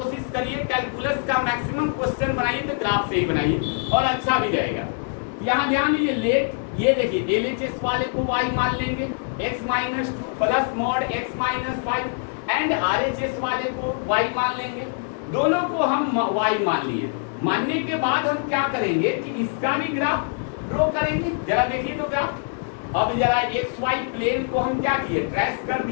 करिए, कैलकुलस का मैक्सिमम क्वेश्चन बनाइए तो ग्राफ से ही बनाइए, और अच्छा भी रहेगा। यहाँ ध्यान दीजिए, लेट, ये देखिए LHS वाले को y मान लेंगे, x - 2 plus mod x - 5, and RHS वाले को y मान लेंगे। दोनों को हम y मान लिए। मानने के बाद हम क्या करेंगे कि इसका भी ग्राफ ड्रॉ करेंगे। जरा देखिए तो ग्राफ। अब जरा XY प्लेन को हम क्या किए, ट्रेस कर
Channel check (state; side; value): silent; right; 63 dB below the other